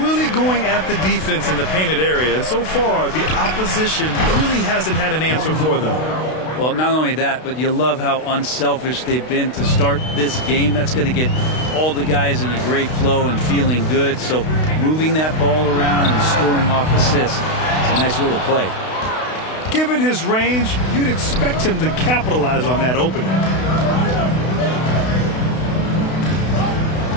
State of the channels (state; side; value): late; right; 32 ms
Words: really going at the defense in the painted area, and so far the opposition really hasn't had an answer for them. Well, not only that, but you love how unselfish they've been to start this game. That's going to get all the guys in a great flow and feeling good. So moving that ball around and scoring off assists, it's a nice way to play. Given his range, you'd expect him to capitalize on that opening.